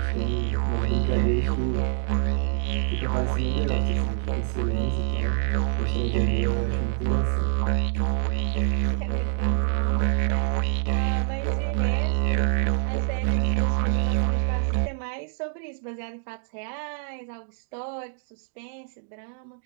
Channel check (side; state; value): left; silent; digital silence